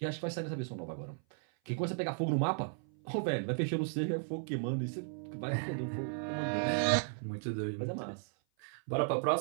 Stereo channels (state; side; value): silent; left; 54 dB below the other